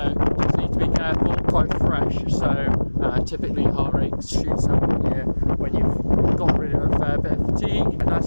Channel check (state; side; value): inverted; both; correlation -1.00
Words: just need to be careful. Quite fresh, so typically heart rate shoots up when you've got rid of a fair bit of fatigue. And nice